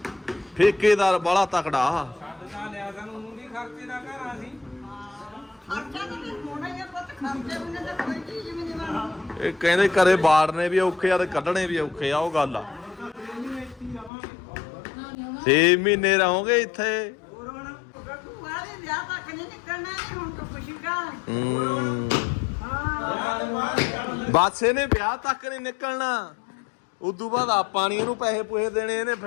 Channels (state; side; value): drops out; right; at 14.1 s